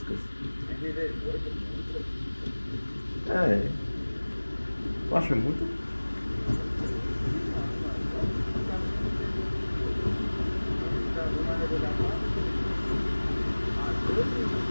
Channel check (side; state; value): both; inverted; correlation -1.00